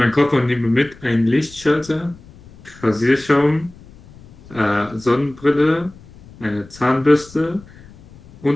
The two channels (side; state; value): left; noise; rumble, 22 dB below the sound